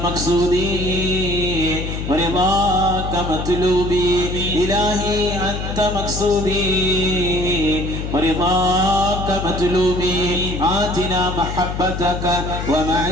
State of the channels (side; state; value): left; noise; hum, 5 dB below the sound